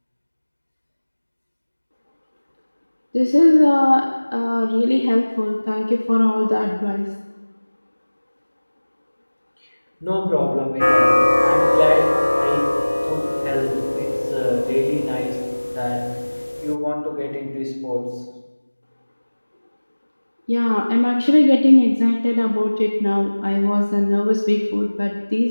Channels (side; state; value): both; inverted; correlation -1.00